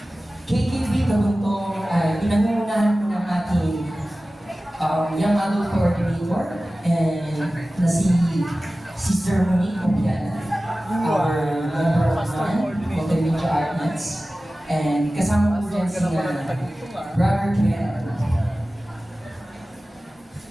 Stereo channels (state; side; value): normal; both; correlation 0.96